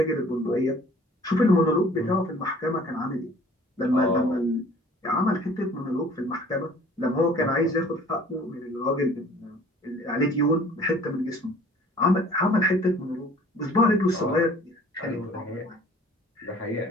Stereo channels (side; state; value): both; normal; correlation 0.51